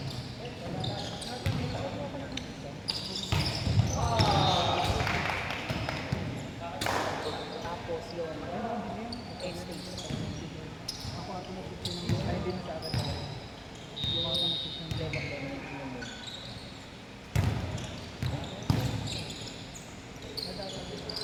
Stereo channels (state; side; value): identical; both; correlation 1.00